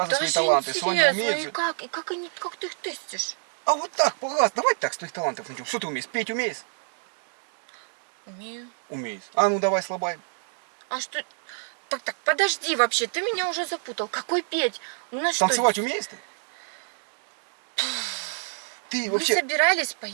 свои Даже таланты. Соня интересно, умеет и же. как ты их тестишь? А вот так, пожалуйста, давай так, с твоих талантов начнем. Что ты умеешь? Петь умеешь? Умею. Умеешь. А ну давай слабай. А что? Так, подожди вообще, ты меня уже запутал. Какой петь? У нас Танцевать что? умеешь ты? Ты Мы вообще... собирались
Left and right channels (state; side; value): silent; left; 60 dB below the other